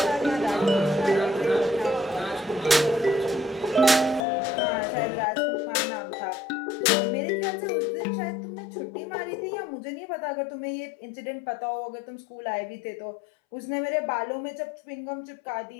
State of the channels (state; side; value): drops out; right; at 4.2 s